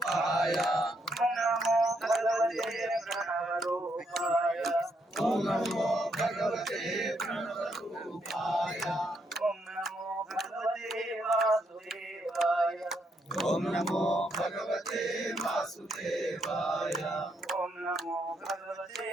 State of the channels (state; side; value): normal; both; correlation 0.76